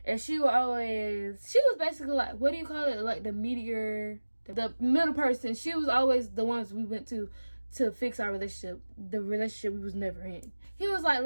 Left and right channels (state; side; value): inverted; both; correlation -1.00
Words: and she was basically like, what do you call it, like the mediator, the middle person. She was always the ones we went to fix our relationship, the relationship we was never in. He was like,